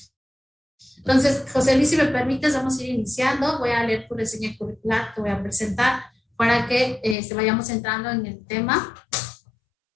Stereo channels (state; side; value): drops out; right; at 7.2 s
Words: Entonces, José Luis, si me permites, vamos a ir iniciando. Voy a leer tu reseña curricular, te voy a presentar para que se vayamos entrando en el tema.